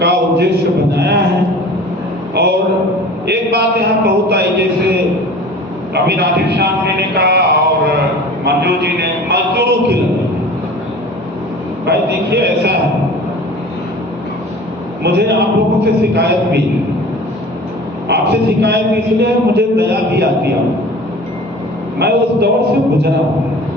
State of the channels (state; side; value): normal; both; correlation 0.41